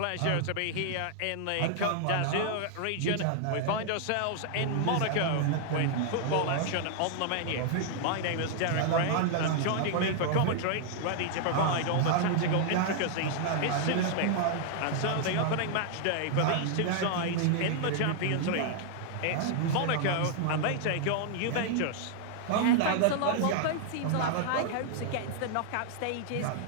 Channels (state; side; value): different; both; correlation -0.01